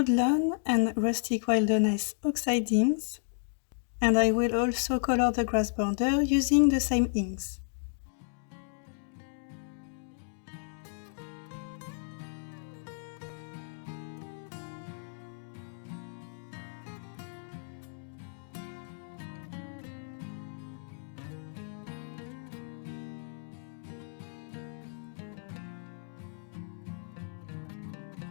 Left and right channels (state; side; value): silent; right; digital silence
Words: lawn and rustic wilderness oxidings. And I will also color the grass border using the same inks.